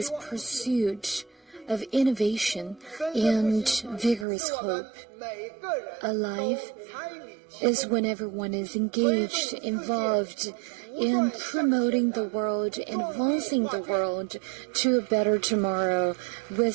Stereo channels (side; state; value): left; drops out; at 4.2 s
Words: pursuit of innovation and vigorous hope. Alive is when everyone is engaged, involved in promoting the world, advancing the world to a better tomorrow